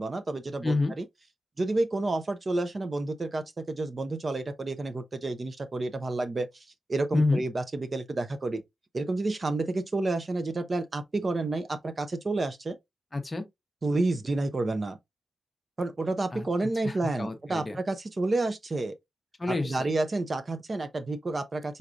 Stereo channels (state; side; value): normal; both; correlation 0.93